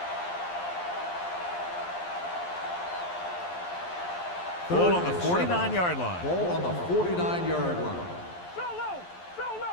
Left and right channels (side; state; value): right; late; 11 ms